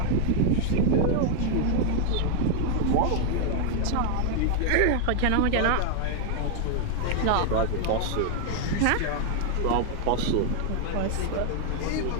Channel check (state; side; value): different; both; correlation 0.00